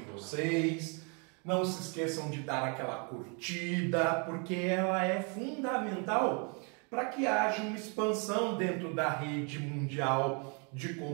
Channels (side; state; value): left; quieter; 35.9 dB